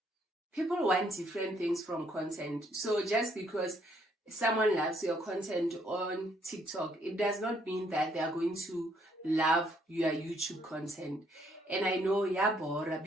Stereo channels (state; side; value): normal; both; correlation 0.69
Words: people want different things from content. So just because someone loves your content on TikTok, it does not mean that they are going to love your YouTube content. And I know, Bora,